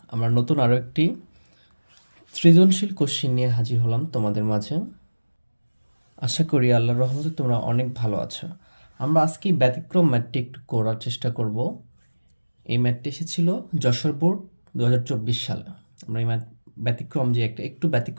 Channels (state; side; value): inverted; both; correlation -1.00